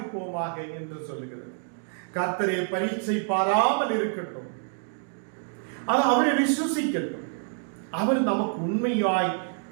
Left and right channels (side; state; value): left; silent; 60 dB below the other